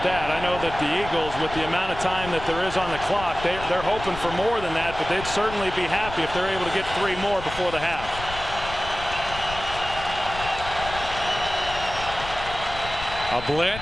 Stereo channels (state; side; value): noise; left; rumble, 11 dB below the sound